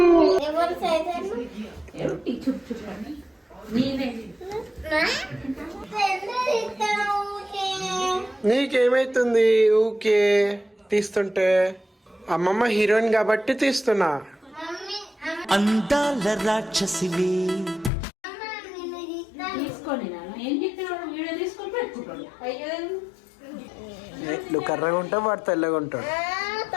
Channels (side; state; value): right; drops out; at 17.9 s